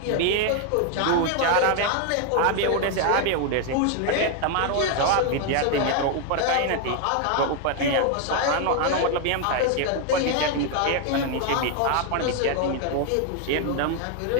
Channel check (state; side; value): different; both; correlation 0.01